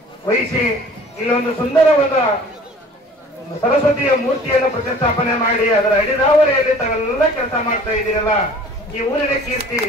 ವಹಿಸಿ ಇಲ್ಲೊಂದು ಸುಂದರವಾದ ಸರಸ್ವತಿಯ ಮೂರ್ತಿಯನ್ನು ಪ್ರತಿಷ್ಠಾಪನೆ ಮಾಡಿ ಅದರ ಅಡಿದಾವರೆಯಲ್ಲಿ ತಾವೆಲ್ಲ ಕೆಲಸ ಮಾಡ್ತಾ ಇದ್ದೀರಲ್ಲ, ಈ ಊರಿನ ಕೀರ್ತಿ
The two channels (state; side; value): normal; both; correlation 0.48